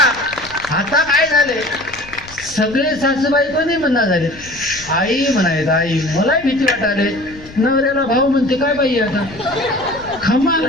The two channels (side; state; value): left; noise; rumble, 20 dB below the sound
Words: काय झाले, सगळे सासूबाई पण नाही म्हणणार झाले, आई म्हणायत. आई मलाही भीती वाटायले. नवऱ्याला भाऊ म्हणते काय बाई आता खमाल